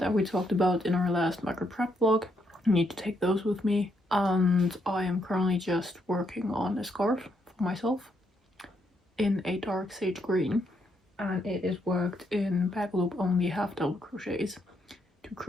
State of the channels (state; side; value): normal; both; correlation 0.76